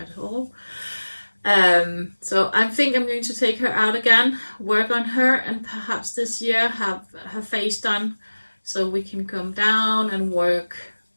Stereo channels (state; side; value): inverted; both; correlation -1.00